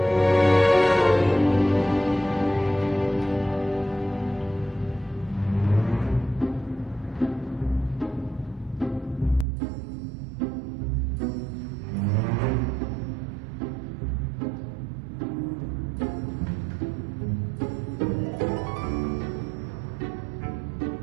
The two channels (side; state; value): left; drops out; at 9.5 s